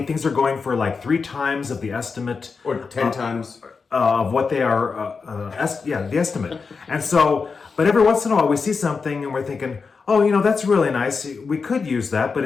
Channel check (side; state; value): right; quieter; 5.0 dB